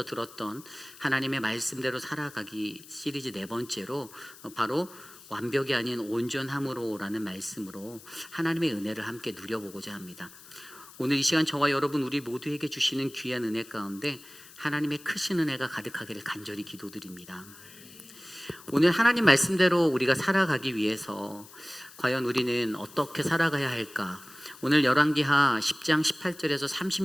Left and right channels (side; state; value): left; noise; hiss, 20 dB below the sound